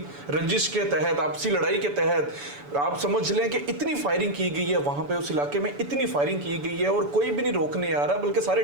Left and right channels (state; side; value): late; left; 7.0 ms